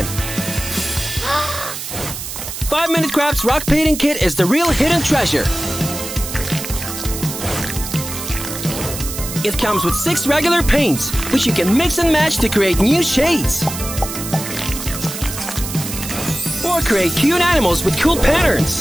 5-Minute Crafts rock painting kit is the real hidden treasure. It comes with 6 regular paints, which you can mix and match to create new shades. Or create cute animals with cool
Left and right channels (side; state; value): right; noise; hiss, 8 dB below the sound